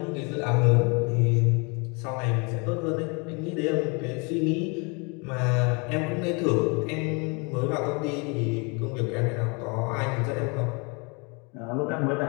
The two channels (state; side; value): quieter; right; 31.6 dB